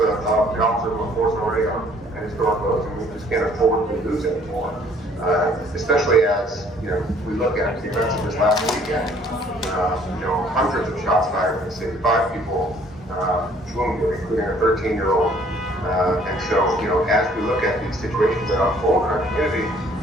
of the officers of the force already are at historic lows, and we just can't afford to lose anymore. Especially as we look at the events of this last weekend. Hundreds of shots fired in the city, 5 people wounded, including a 13-year-old And so, you know, as we look at these situations that unfold in our community,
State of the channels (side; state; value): both; normal; correlation 0.59